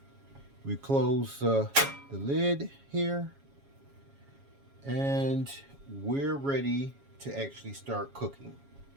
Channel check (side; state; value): left; late; 7.2 ms